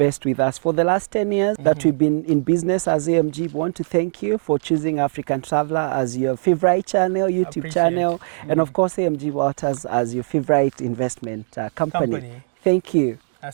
with us. For the last 10 years that we've been in business as AMG, we want to thank you for choosing African Traveler as your favorite channel, YouTube channel, and of course AMG Realtors as your favorite investment company. Thank you.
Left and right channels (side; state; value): left; silent; digital silence